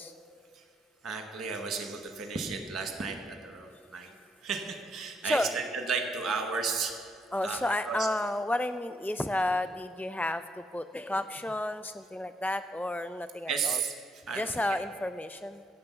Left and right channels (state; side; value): normal; both; correlation 0.74